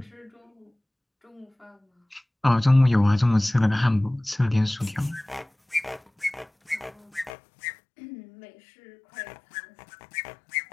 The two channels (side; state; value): right; drops out; at 7.4 s